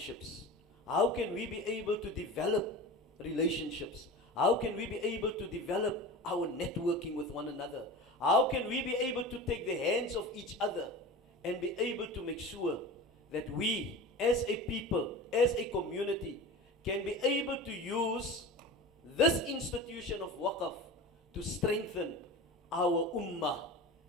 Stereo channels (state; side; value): normal; both; correlation 0.32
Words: How can we be able to develop relationships? How can we be able to develop our networking with one another? How can we be able to take the hands of each other and be able to make sure that we, as a people, as a community, can be able to use this institution of Waqf to strengthen our ummah